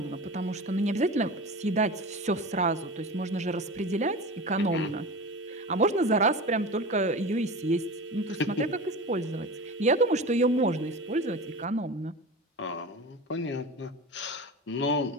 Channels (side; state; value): both; normal; correlation 0.31